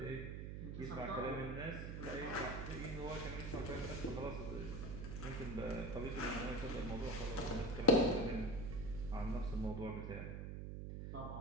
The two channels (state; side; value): noise; right; hum, 5 dB below the sound